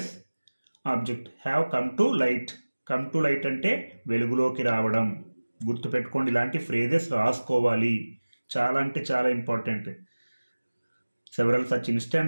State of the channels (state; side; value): inverted; both; correlation -1.00